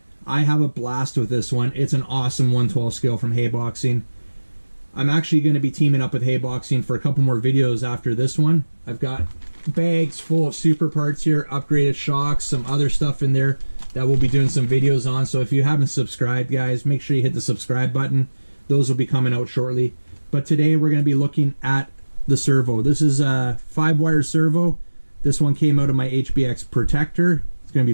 I have a blast with this one. It's an awesome 112 scale from Haiboxing. I'm actually going to be teaming up with Haiboxing for a couple more videos after this one. I've got bags full of super parts here, upgraded shocks, some other stuff in there that we'll be doing some videos on. So if you haven't subscribed, guys, make sure you hit the subscribe button. Those will be coming out shortly. But today we're going to be looking at the servo. This is a 5-wire servo. This one came out of my HBX protector. It's going to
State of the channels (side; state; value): both; inverted; correlation -1.00